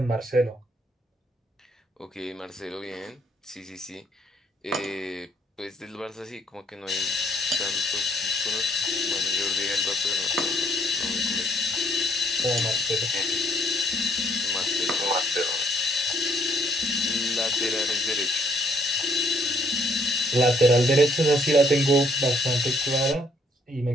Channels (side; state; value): both; normal; correlation 0.66